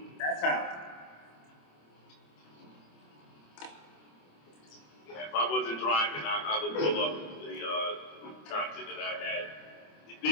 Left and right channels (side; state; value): right; late; 26 ms